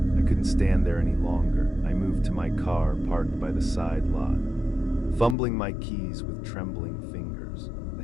I couldn't stand there any longer. I moved to my car, parked by the side lot. Fumbling my keys with trembling fingers.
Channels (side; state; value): right; drops out; at 5.4 s